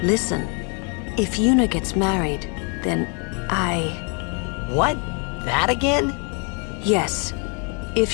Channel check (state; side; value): quieter; right; 36.8 dB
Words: Listen, if Yuna gets married, then What? That again? Yes. If